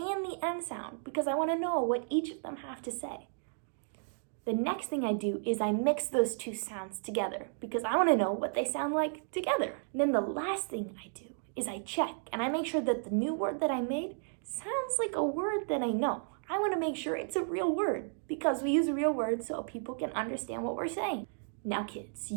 the end sound, because I want to know what each of them have to say. The next thing I do is I mix those two sounds together, because I want to know what they sound like together. And then the last thing I do is I check, and I make sure that the new word that I made sounds like a word that I know. I want to make sure it's a real word, because we use real words so people can understand what we're saying. Now, kids,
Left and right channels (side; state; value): left; silent; digital silence